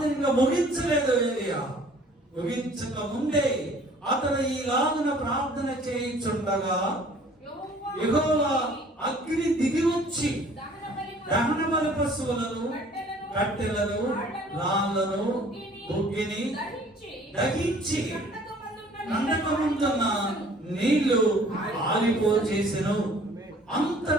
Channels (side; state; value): both; normal; correlation 0.53